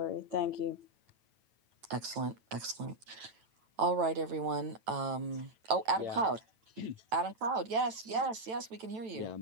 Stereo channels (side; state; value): left; late; 9.1 ms